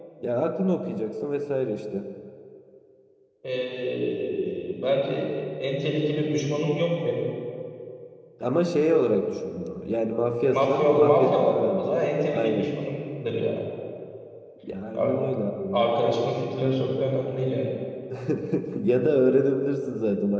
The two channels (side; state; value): both; identical; correlation 1.00